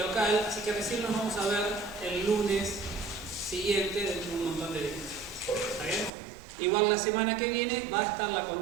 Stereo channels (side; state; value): left; drops out; at 6.1 s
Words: así que recién nos vamos a ver el lunes siguiente dentro de un montón de días. ¿Está bien? Igual la semana que viene va a estar la